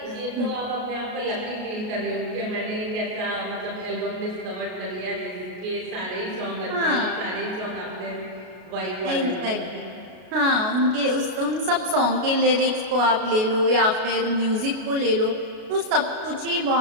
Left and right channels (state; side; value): late; left; 33 ms